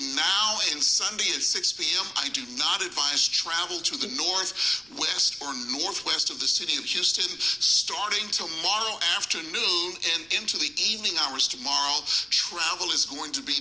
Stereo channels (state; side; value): noise; right; rumble, 28 dB below the sound